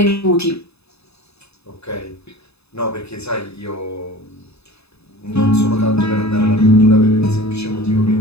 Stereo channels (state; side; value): late; right; 0.79 ms